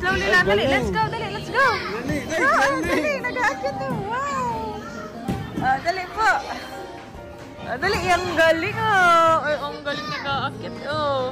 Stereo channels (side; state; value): both; identical; correlation 1.00